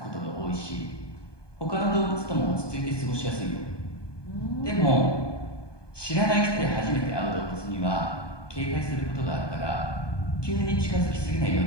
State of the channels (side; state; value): right; late; 1.2 ms